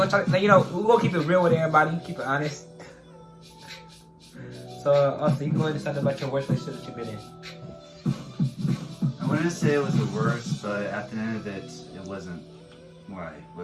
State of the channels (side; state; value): both; identical; correlation 1.00